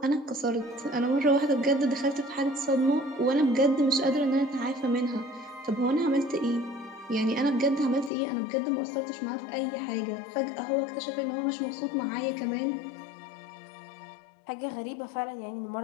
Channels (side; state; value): right; drops out; at 8.1 s